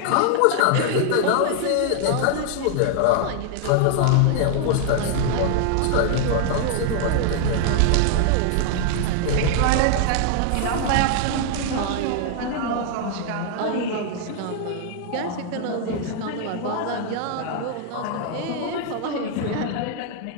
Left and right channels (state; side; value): different; both; correlation 0.00